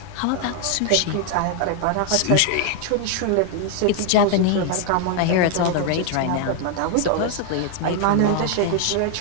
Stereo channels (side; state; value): both; different; correlation 0.00